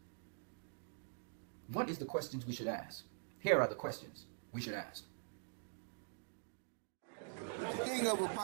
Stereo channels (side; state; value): left; silent; digital silence